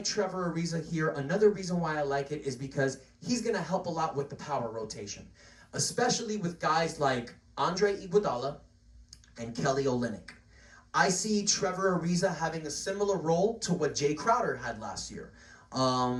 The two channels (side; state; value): both; identical; correlation 1.00